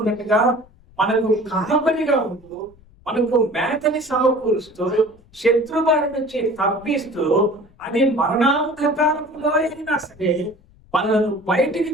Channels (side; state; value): left; noise; rumble, 27 dB below the sound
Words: మనకు కాపరిగా ఉంటూ, మనకు మేతని సమకూరుస్తూ, శత్రుబారి నుంచి తప్పిస్తూ, అది మరణాంధకారంలో అయినా సరే మనను బయటికి